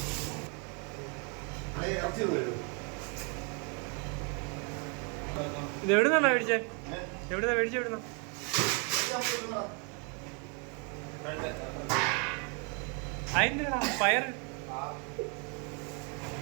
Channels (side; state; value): left; quieter; 35.5 dB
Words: ഇത് എവിടുന്നാ മേടിച്ചേ? എവിടുന്നാ മേടിച്ചേ? എവിടുന്ന അതിന്റെ പയർ